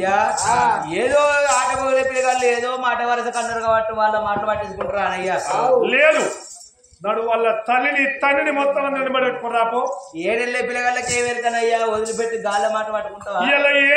ఏదో ఆట మొదలే పిల్లగాళ్ళు ఏదో మాట వరస కన్నారు కాబట్టి వాళ్ళ మాట పట్టించుకుంటారా అయ్యా లేదు నడు వాళ్ళ తల్లిని తండ్రిని మొత్తం నిలబడి పెట్టుకుని రాపో ఏడెళ్ళే పిల్లగాళ్ళకి ఏమెరుకనయ్యా వదిలిపెట్టి గాళ్ళ మాట పట్టుకుంటావా ఇలా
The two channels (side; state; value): both; identical; correlation 1.00